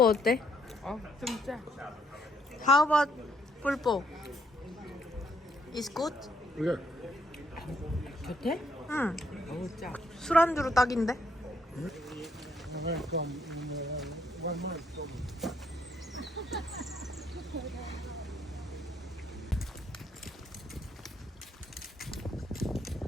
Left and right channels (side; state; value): both; normal; correlation 0.71